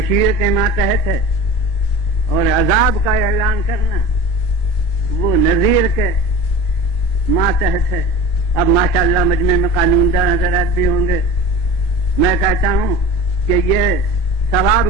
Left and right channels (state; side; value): late; right; 2.6 ms